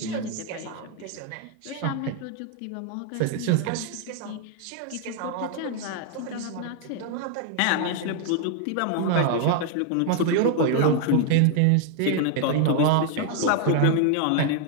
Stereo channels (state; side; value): different; both; correlation 0.00